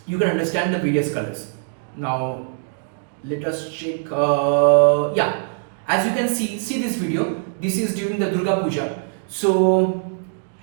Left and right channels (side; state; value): left; silent; digital silence